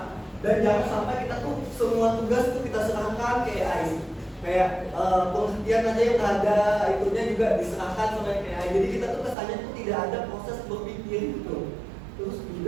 Dan jangan sampai kita tuh semua tugas tuh kita serahkan ke AI. Kayak pengertian aja yang ada itunya juga diserahkan sama AI. Jadi kita tuh kesannya tuh tidak ada proses berpikir gitu. Terus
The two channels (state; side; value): drops out; left; at 9.3 s